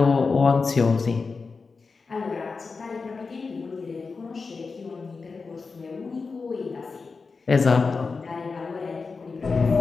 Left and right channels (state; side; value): quieter; right; 4.5 dB